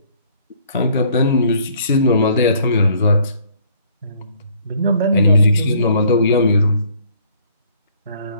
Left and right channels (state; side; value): inverted; both; correlation -0.60